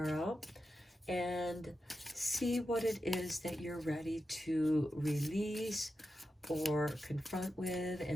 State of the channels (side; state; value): both; normal; correlation 0.90